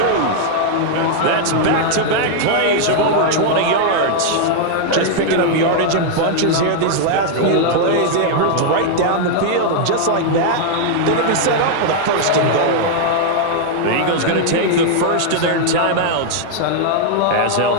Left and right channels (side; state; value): both; different; correlation 0.00